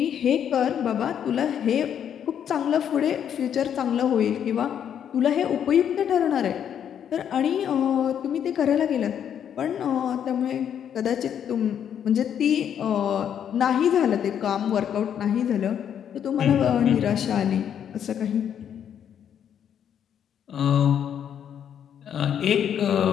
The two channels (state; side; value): quieter; right; 9.0 dB